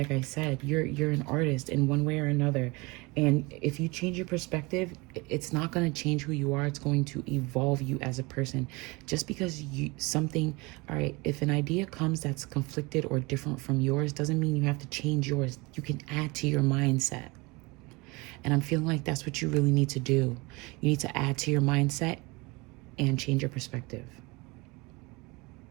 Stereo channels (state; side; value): quieter; left; 25.4 dB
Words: I said, you're an artist in one way or another. And if you change your perspective, it's not going to change who you are. It's going to evolve you as a person. Just because all right, if an idea comes that's conflicted or different from yours, doesn't mean you have to change yours. You can add to your mindset. And I'm feeling like that's what you really need to do. You need to add to your mindset and change your perspective.